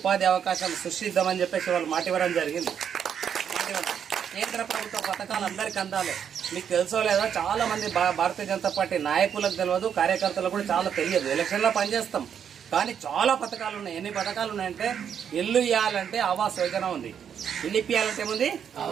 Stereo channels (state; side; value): quieter; left; 8.2 dB